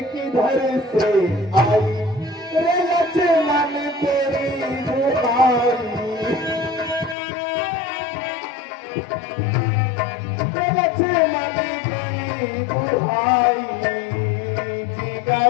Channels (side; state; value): right; drops out; at 7.2 s